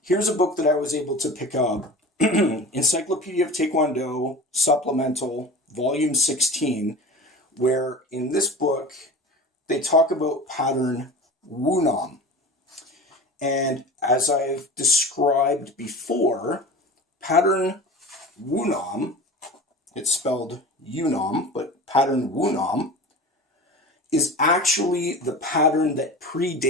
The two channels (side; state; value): both; normal; correlation 0.35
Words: a book that I was able to pick up, Encyclopedia of Taekwondo, Supplemental, Volume 16, where in this book, they talk about pattern Wunam. And as I've described before, pattern Wunam, it's spelled Yunam, but pattern Wunam, is actually the pattern that